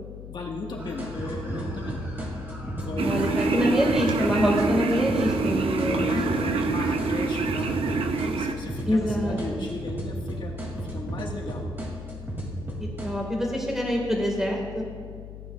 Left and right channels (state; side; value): noise; left; hum, 12 dB below the sound